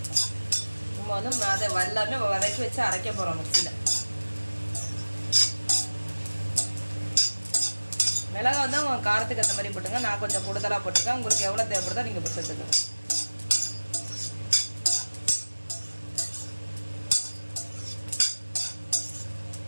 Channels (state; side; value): inverted; both; correlation -1.00